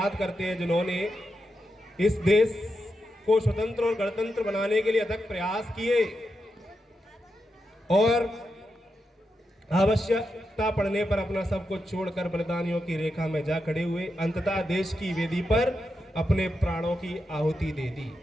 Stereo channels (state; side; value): normal; both; correlation 0.86